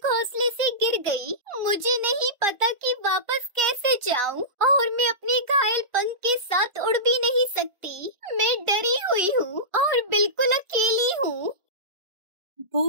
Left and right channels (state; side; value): late; left; 1.4 ms